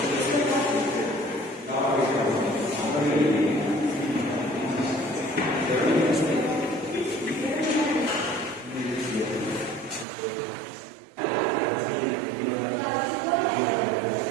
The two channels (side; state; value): left; drops out; at 10.1 s